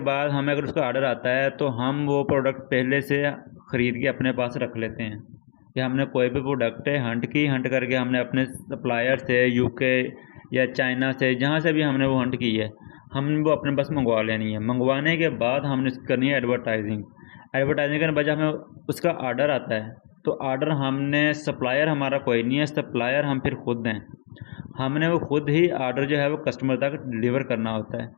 बाद हमें अगर उसका ऑर्डर आता है तो हम वो प्रोडक्ट पहले से ख़रीद के अपने पास रख लेते हैं कि हमने कोई भी प्रोडक्ट है हंट करके हमने अपने सप्लायर से यूके या चाइना से जहाँ से भी हमने वो हंट की है हमने वो अपने पास मंगवा लेनी है। मंगवाने के बाद हमने करनी है एडवर्टाइजिंग। एडवर्टाइजिंग करने के बाद जब हमें उसका ऑर्डर आता है तो ऑर्डर हमने सप्लायर हमारा कोई नहीं है, सप्लायर हम फिर खुद हैं। हमने वो खुद ही ऑर्डर जो है वो कस्टमर तक डिलीवर करना होता है।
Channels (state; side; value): silent; right; digital silence